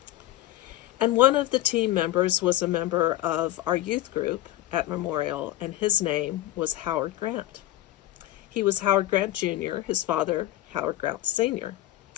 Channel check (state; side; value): quieter; right; 15.0 dB